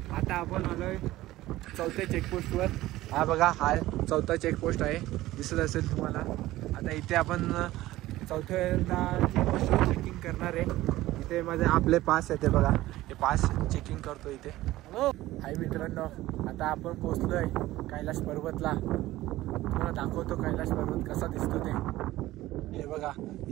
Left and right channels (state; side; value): quieter; left; 16.5 dB